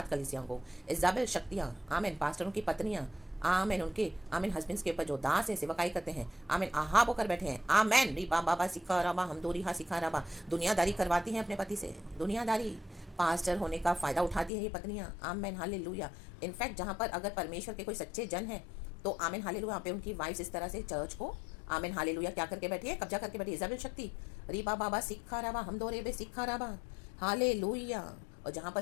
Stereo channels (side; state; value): right; drops out; at 14.5 s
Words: कलिसियाओं को, इजाबेल शक्तियाँ, आमेन, पास्टरों की पत्नियाँ, आमेन। उनके आमेन हस्बैंड्स के ऊपर जो दास है सेवकाई करते हैं, आमेन आहाब होकर बैठे हैं, आमेन। रिबा बाबा सिखा रबा हम दो रिहा सिखा रबा, दुनियादारी करवाती हैं अपने पति से, दुनियादारी पास्टर होने का फ़ायदा उठाती है ये पत्नियाँ, आमेन हालेलुया। इनफैक्ट जहाँ पर अगर परमेश्वर के कोई सच्चे जन हैं तो आमेन हालेलुया, वहाँ पे उनकी वाइफ्स इस तरह से चर्च को आमेन हालेलुया क्या करके बैठी है, कब्जा करके बैठी है, इज़ाबेल शक्ति। रीबा बाबा सिखा रबा हम दो रेबे सिखा रबा हालेलुया। और जहाँ पर